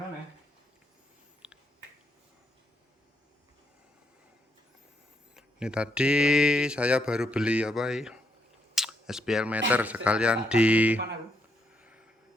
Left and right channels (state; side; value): normal; both; correlation 0.76